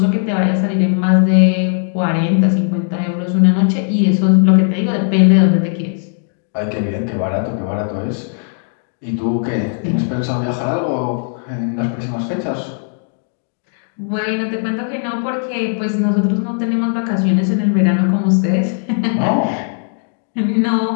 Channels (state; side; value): silent; right; 57 dB below the other